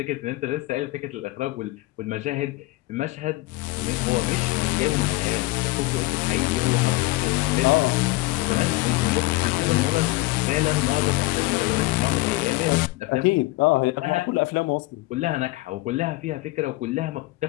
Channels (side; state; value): right; quieter; 21.0 dB